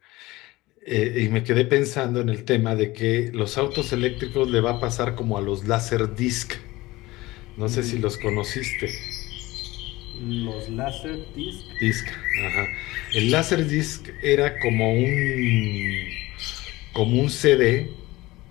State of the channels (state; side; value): quieter; right; 19.6 dB